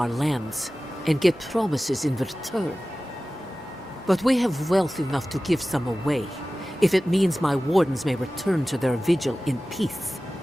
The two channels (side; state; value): both; normal; correlation 0.96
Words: lands, and get promises in return. But we have wealth enough to give some away, if it means my Wardens may return to their vigil in peace.